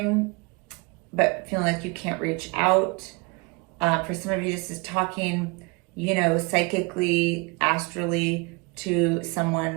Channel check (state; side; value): quieter; left; 29.9 dB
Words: but feeling like you can't reach out. For some of you, this is talking, you know, psychically, astrally to